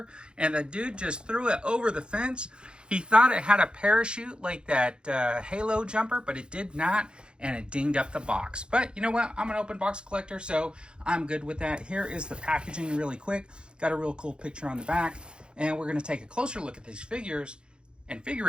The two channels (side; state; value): left; late; 0.052 ms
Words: and the dude just threw it over the fence. He thought it had a parachute like that Halo jumper, but it did not, and it dinged up the box. But you know what? I'm an open box collector, so I'm good with that. Here is the packaging really quick. Got a real cool picture on the back, and we're going to take a closer look at these figures and